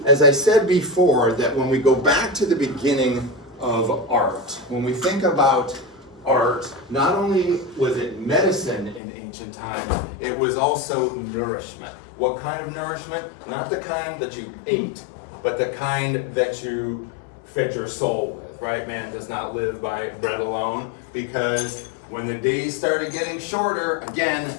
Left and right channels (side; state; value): right; drops out; at 9.0 s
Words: as I said before, that when we go back to the beginning of art, when we think about art, not only was it medicine in ancient times, it was also nourishment. What kind of nourishment? Not the kind that you ate, but the kind that you fed your soul with, right? Man does not live by bread alone, because when the days started getting shorter, again,